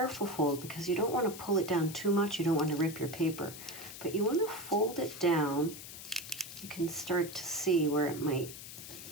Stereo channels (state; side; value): noise; left; hiss, 12 dB below the sound